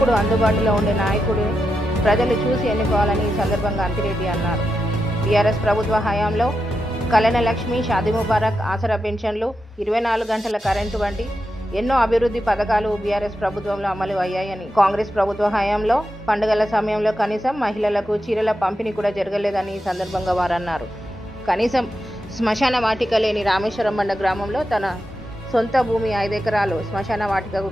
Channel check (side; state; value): both; normal; correlation 0.88